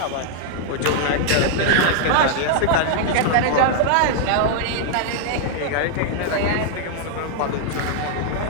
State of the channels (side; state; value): both; different; correlation 0.00